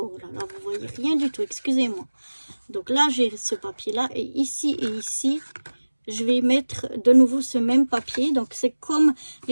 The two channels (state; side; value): inverted; both; correlation -1.00